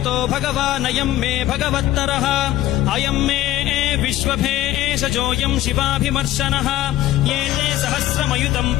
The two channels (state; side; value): quieter; right; 14.5 dB